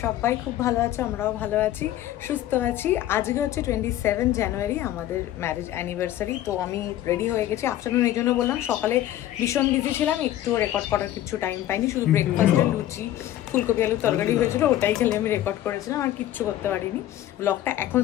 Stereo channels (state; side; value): quieter; right; 13.1 dB